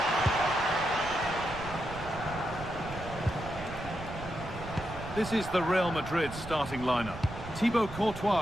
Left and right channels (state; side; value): noise; right; rumble, 12 dB below the sound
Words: This is the Real Madrid starting lineup. Thibaut